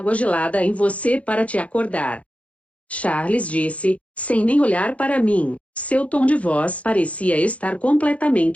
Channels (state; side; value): late; right; 0.064 ms